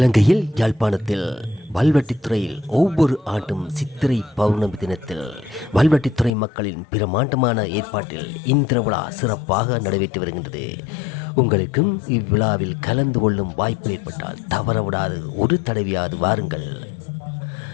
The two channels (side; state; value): right; drops out; at 6.3 s